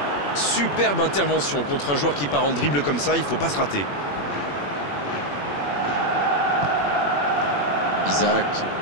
Superbe intervention contre un joueur qui part en dribble comme ça, il ne faut pas se rater. Isaac.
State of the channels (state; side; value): late; right; 21 ms